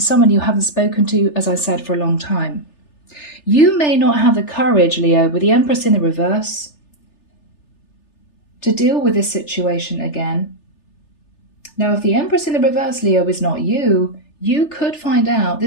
someone you haven't spoken to, as I said, for a long time. You may not have the courage, Leo, with the Empress in the reverse, to deal with this situation again. Now, if the Empress in the reverse, Leo, is not you, you could find out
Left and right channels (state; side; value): late; right; 3.3 ms